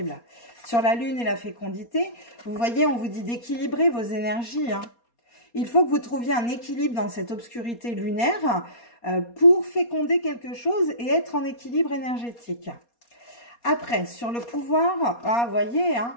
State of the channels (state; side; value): late; right; 4.2 ms